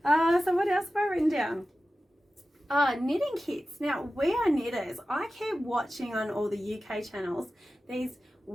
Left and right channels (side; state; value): both; normal; correlation 0.94